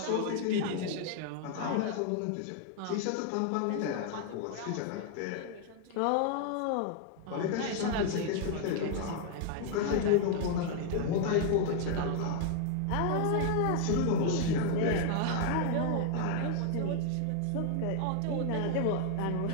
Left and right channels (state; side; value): different; both; correlation 0.00